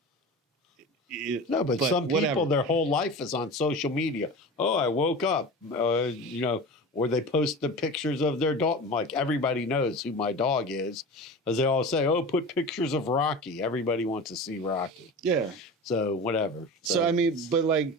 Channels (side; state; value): both; normal; correlation 0.32